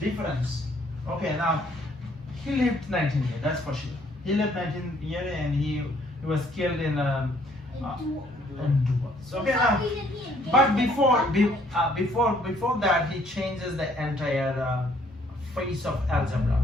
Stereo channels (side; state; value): both; normal; correlation 0.64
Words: Okay, now he lived 19 years. That's for sure. He lived 19 years, and he was killed in A duel. duels. Okay, For now. some reason he invaded But the country. before that, he changes the entire face of algebra.